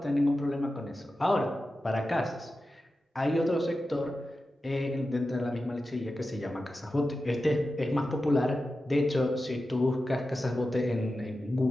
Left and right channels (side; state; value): both; normal; correlation 0.92